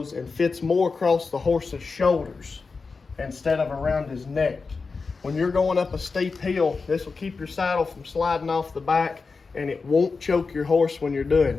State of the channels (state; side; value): quieter; right; 4.5 dB